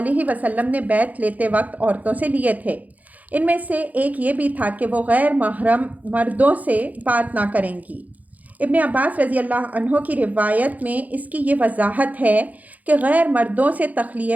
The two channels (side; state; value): left; late; 0.078 ms